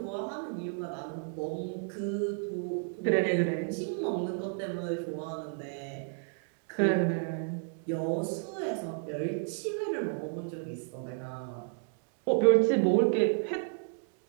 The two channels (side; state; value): left; silent; 56 dB below the other